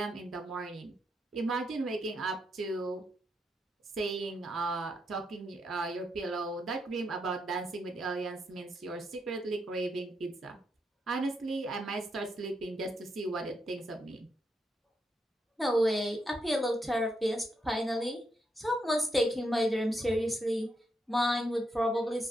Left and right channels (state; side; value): normal; both; correlation 0.80